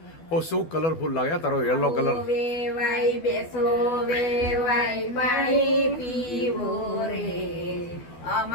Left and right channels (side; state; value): right; late; 12 ms